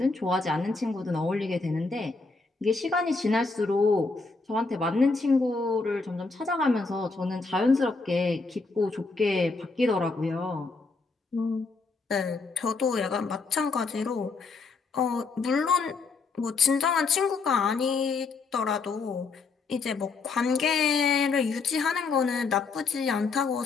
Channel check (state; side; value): quieter; right; 4.1 dB